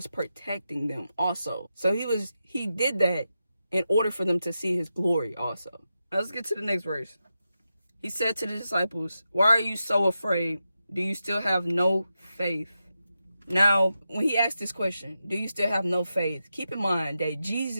protecting them also. So he did that in order for them to see his glory also. Now let's get to the next verse. He said to the disciples, "Why are you so afraid? Do you still have no faith?" Now, when he asked this question, do you still have no faith? Keep in mind that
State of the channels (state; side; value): inverted; both; correlation -0.89